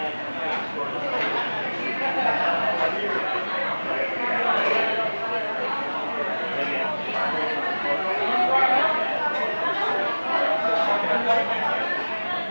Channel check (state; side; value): inverted; both; correlation -1.00